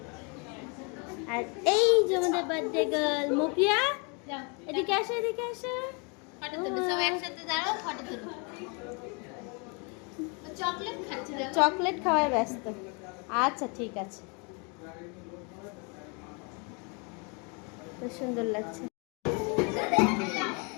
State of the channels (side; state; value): right; quieter; 33.7 dB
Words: আর এই যে আমাদের বার্থডে গার্ল মুক্রিয়া, এদিকে আসো, এদিকে আসো। ফটো তুলো, সবাই একসাথে দাঁড়াও, ফটো তুলো। চকলেট খাচ্ছে, চকলেট খাওয়ায় ব্যস্ত। আচ্ছা ঠিক আছে, খুব সুন্দর লাগছে।